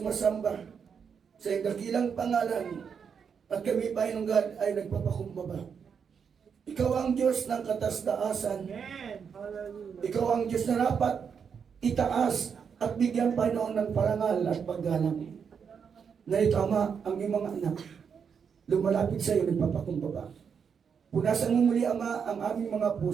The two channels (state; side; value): quieter; left; 6.7 dB